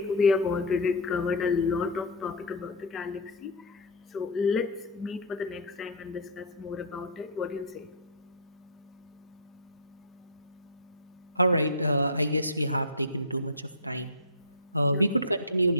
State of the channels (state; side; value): normal; both; correlation -0.14